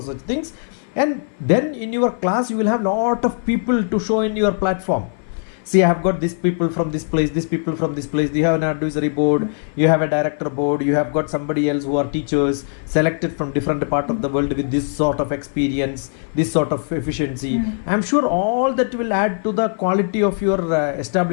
such things. And then in your class you will have lot of people to show in your platform. See, I have got these people from this place, these people from this place. You have an advisory board, you have a director board, you have got somebody else who are teachers selected from different part of the world with this sort of experience, this sort of efficiency. I'm sure all that will add to the quality of your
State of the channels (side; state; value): right; silent; 56 dB below the other